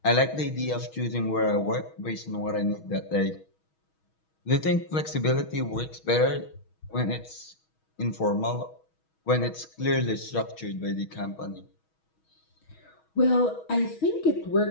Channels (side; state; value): right; late; 6.3 ms